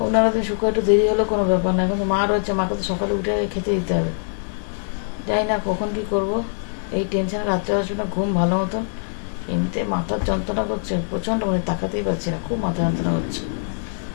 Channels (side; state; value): right; silent; 64 dB below the other